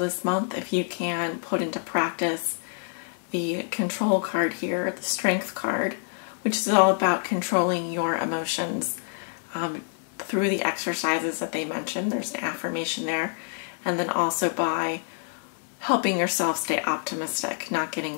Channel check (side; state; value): right; silent; digital silence